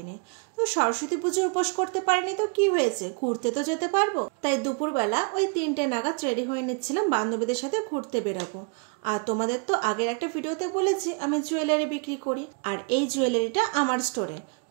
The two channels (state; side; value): quieter; left; 37.0 dB